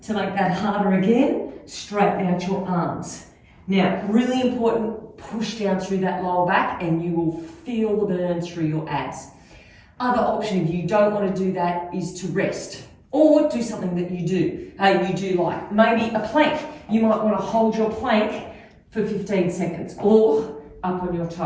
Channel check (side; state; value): both; identical; correlation 1.00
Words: To make that harder again, straighten out your arms. Now, really important, push down through that lower back and you will feel the burn through your abs. Other option, if you don't want to do that, is to rest or do something that you do like. Maybe a plank. You might want to hold your plank for 15 seconds or up on your